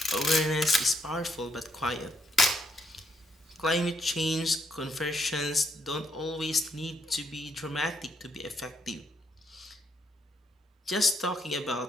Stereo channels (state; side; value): normal; both; correlation 0.75